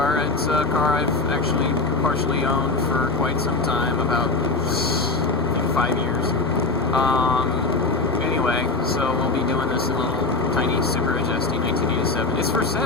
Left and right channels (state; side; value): quieter; right; 3.6 dB